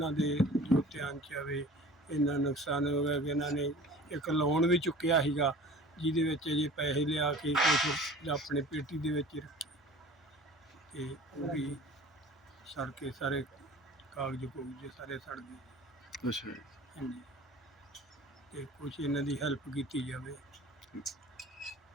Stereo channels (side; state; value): both; normal; correlation 0.42